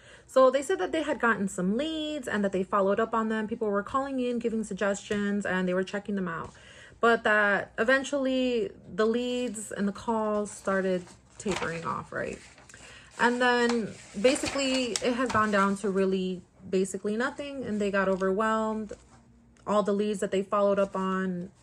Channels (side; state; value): both; identical; correlation 1.00